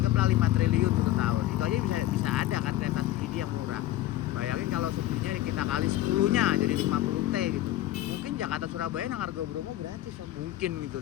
5 triliun 1 tahun. Itu aja bisa ada kan kereta subsidi yang murah. Bayangin kalau subsidinya kita kali 10-nya jadi 50 T gitu. Mungkin Jakarta Surabaya nang harga Bromo gratis ya. Mungkin gitu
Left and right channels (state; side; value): quieter; right; 14.7 dB